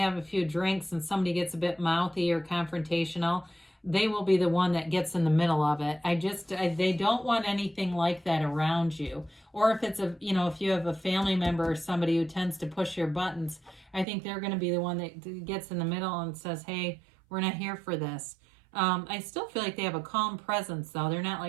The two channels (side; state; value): left; drops out; at 14.1 s